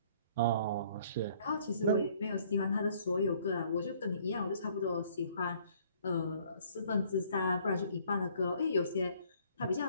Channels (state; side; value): inverted; both; correlation -0.60